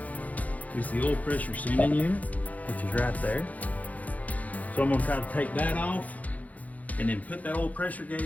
is the oil pressure sending unit, which is right there. So I'm gonna try to take that off and then put that oil pressure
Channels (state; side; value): late; right; 0.075 ms